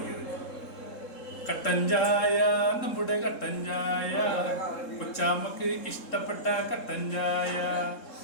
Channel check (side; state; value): right; late; 3.7 ms